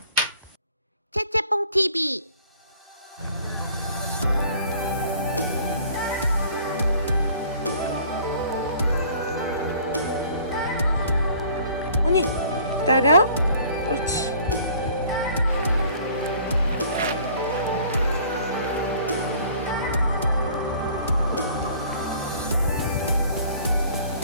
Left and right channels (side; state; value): both; inverted; correlation -0.53